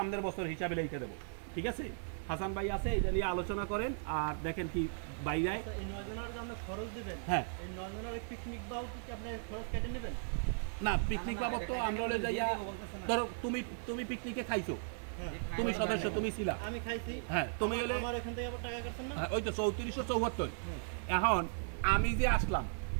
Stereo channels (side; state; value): left; silent; digital silence